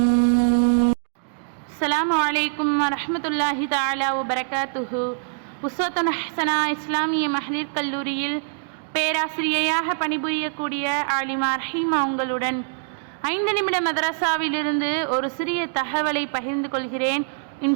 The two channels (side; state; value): left; silent; digital silence